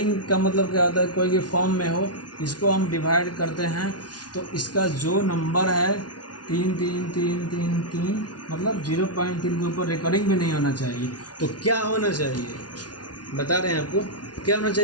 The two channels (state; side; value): late; right; 0.69 ms